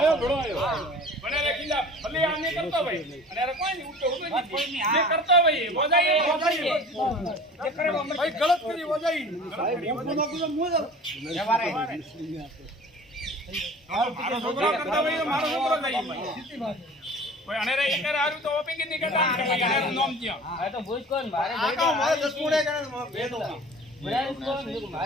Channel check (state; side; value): normal; both; correlation 0.42